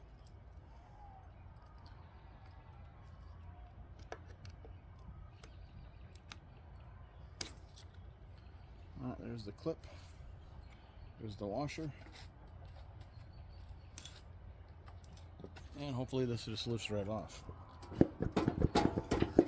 There's the clip. There's the washer. And hopefully this just lifts right off.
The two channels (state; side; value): identical; both; correlation 1.00